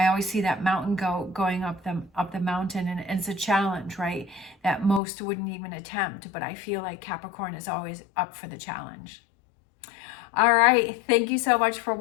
always see that mountain goat going up the mountain, and it's a challenge, right? That most wouldn't even attempt, but I feel like Capricorn is always up for the challenge. All right, thank you so much for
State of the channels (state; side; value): drops out; right; at 5.0 s